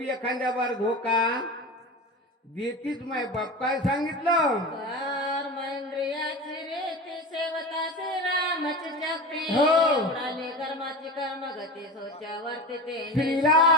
एखाद्या बार धोका देतीच. माय बाप काय सांगितलं? कर्मेंद्रियाची रीती सेवता श्रीरामची शक्ती. हो. उडाली कर्माची कर्मगती सोच्यावरती ते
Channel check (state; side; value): normal; both; correlation 0.29